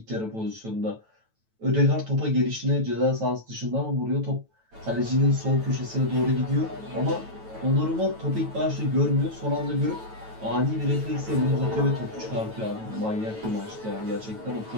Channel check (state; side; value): late; left; 9.1 ms